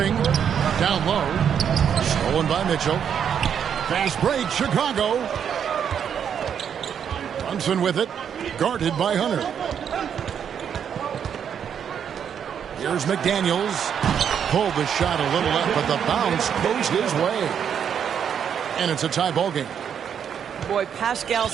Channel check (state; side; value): quieter; left; 8.1 dB